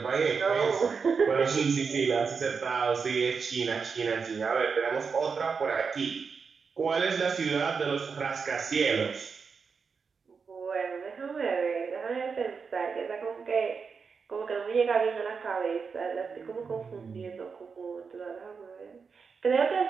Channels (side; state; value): left; quieter; 5.5 dB